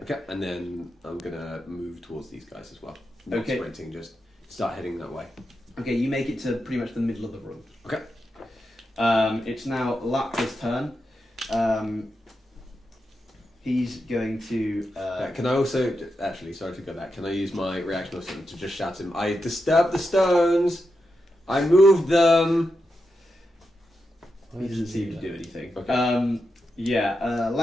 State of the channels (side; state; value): both; normal; correlation 0.87